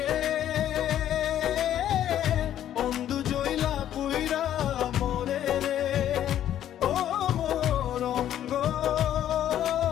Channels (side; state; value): right; quieter; 11.2 dB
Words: অন্ধু জইলা পুইরা মোরে রে, ও মোর অঙ্গ